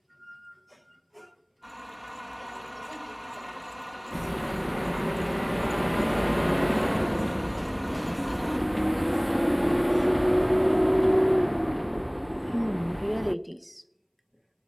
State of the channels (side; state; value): both; identical; correlation 1.00